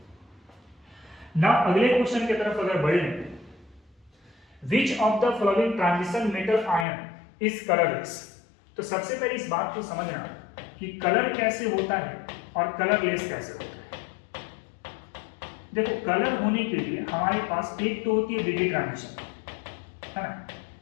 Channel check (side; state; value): right; drops out; at 6.9 s